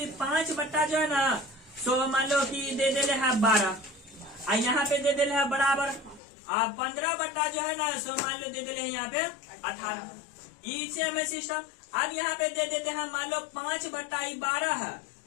5 बट्टा जो है ना, सो मान लो कि दे दे है 12, और यहाँ पे दे दे है बराबर 15 बट्टा जो है ना, सो मान लो दे दे है यहाँ पे 18। इसे हमें सिस्टम। अब यहाँ पे दे देते हैं मान लो 5 बट्टा 12 है,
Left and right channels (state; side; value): drops out; right; at 6.2 s